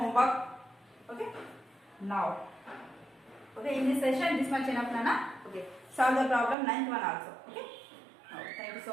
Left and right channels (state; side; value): drops out; left; at 6.6 s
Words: Okay. Now. Okay. In this session, this much enough, Nana. Okay. Solve the problem ninth one also. Okay. Now, thank you